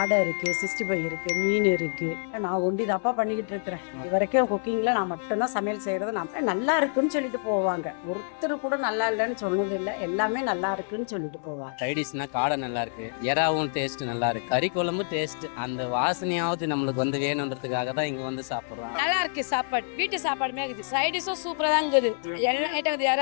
இருக்கு, 65 இருக்கு, மீன் இருக்கு. நான் ஒண்டி தாப்பா பண்ணிக்கிட்டு இருக்கிறேன். இது வரைக்கும் குக்கிங்ல நான் மட்டும்தான் சமையல் செய்யறது. நான் நல்லா இருக்குன்னு சொல்லிட்டு போவாங்க. ஒருத்தர் கூட நல்லா இல்லைன்னு சொன்னது இல்லை. எல்லாமே நல்லா இருக்குன்னு சொல்லிட்டு போவாங்க. சைடிஷ்னா காடை நல்லா இருக்கு, எறாவும் டேஸ்ட் நல்லா இருக்கு, கறி குழம்பு டேஸ்ட் அந்த வாசனையாவது நம்மளுக்கு வந்து வேணுன்றதுக்காக தான் இங்க வந்து சாப்பிடுறோம். நல்லா இருக்கு சாப்பாடு, வீட்டு சாப்பாடுமே இருக்குது. சைடிஷும் சூப்பரா தான் இருக்குது. எல்லா ஐட்டம் இருக்குது,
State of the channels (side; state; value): right; silent; 60 dB below the other